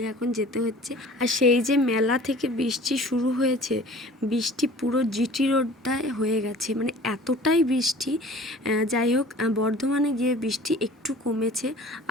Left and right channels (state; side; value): normal; both; correlation 0.46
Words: এখন যেতে হচ্ছে। আর সেই যে মেলা থেকে বৃষ্টি শুরু হয়েছে, বৃষ্টি পুরো জিটি রোডটায় হয়ে গেছে, মানে এতটাই বৃষ্টি। যাই হোক, বর্ধমানে গিয়ে বৃষ্টি একটু কমেছে,